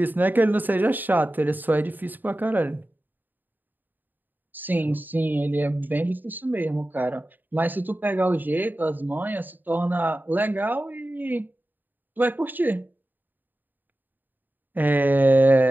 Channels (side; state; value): left; late; 0.089 ms